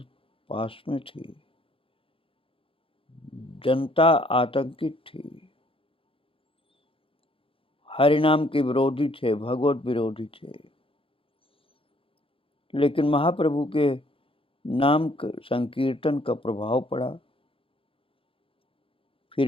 पास में थी। जनता आतंकित थी, हरिनाम के विरोधी थे, भगवत विरोधी थे। लेकिन महाप्रभु के नाम संकीर्तन का प्रभाव पड़ा।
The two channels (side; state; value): right; late; 0.26 ms